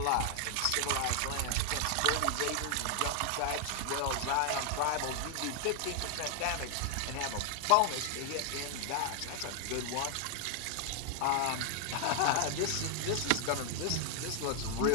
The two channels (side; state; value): both; different; correlation 0.00